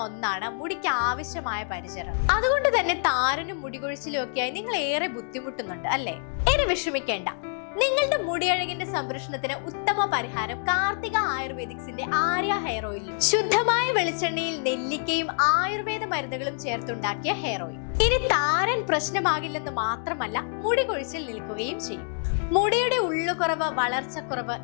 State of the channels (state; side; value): silent; right; 61 dB below the other